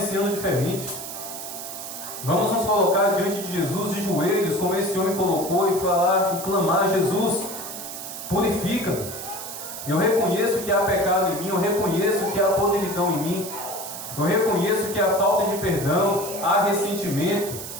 ano diferente. Vamos nos colocar diante de Jesus de joelhos, como esse homem colocou, e falar e clamar: Jesus, purifica-me. Eu reconheço que há pecado em mim, eu reconheço que há podridão em mim, eu reconheço que há falta de perdão, há ressentimento,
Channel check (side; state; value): right; noise; hiss, 9 dB below the sound